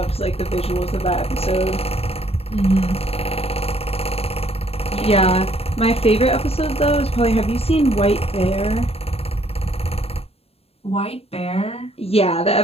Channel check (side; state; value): right; late; 0.29 ms